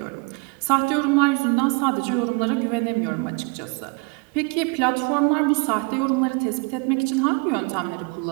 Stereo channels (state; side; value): quieter; left; 31.8 dB